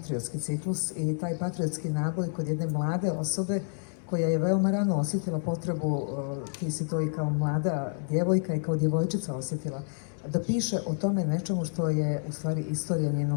ciklus i taj patriotski naboj kod jedne mlade osobe koja je veoma rano osjetila potrebu, ti si to i kao mlada djevojka i kao djevojčica osjetila, da piše o tome nečemu što je u stvari istorija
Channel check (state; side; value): silent; right; digital silence